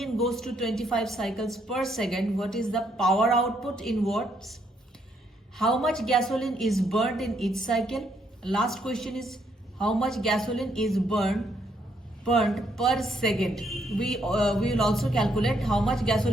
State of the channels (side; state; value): both; normal; correlation 0.73